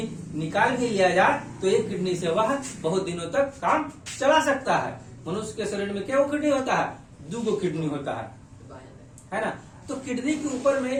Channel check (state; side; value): identical; both; correlation 1.00